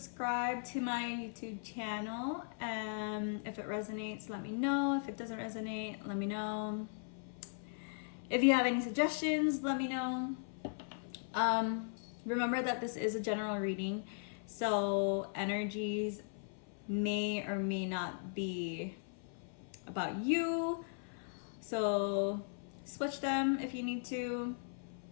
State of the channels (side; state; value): right; silent; 52 dB below the other